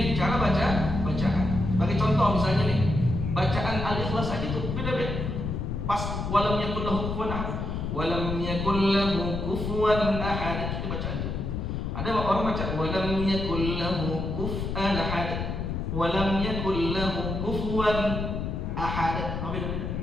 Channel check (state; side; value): noise; left; rumble, 3 dB below the sound